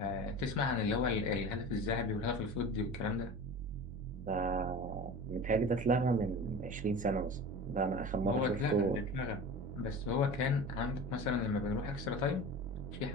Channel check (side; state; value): both; normal; correlation 0.34